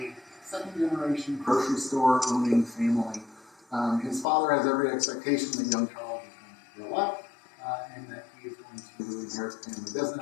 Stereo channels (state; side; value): drops out; right; at 4.2 s